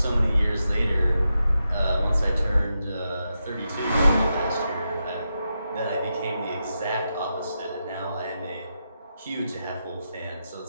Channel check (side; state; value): both; inverted; correlation -0.87